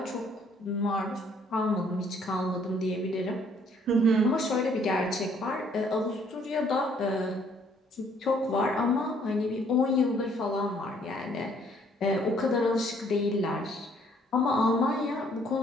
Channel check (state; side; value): normal; both; correlation 0.64